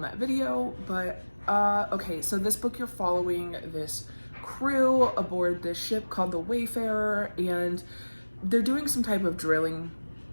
video, but okay, so this book, you're following this crew aboard this ship called the Wayfarer, and they're doing some type of drilling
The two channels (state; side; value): inverted; both; correlation -1.00